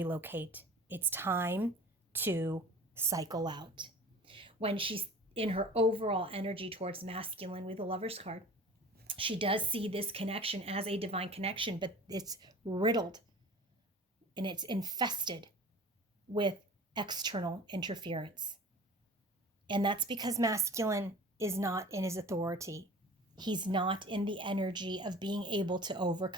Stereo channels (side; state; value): both; normal; correlation 0.42